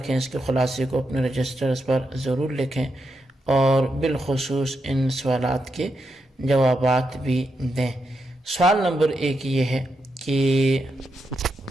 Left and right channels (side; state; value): both; normal; correlation 0.84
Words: اس کے خلاصے کو اپنے رجسٹرز پر ضرور لکھیں اور بالخصوص ان سوالات کے جوابات بھی دیں۔ سوال نمبر 1 یہ ہے کہ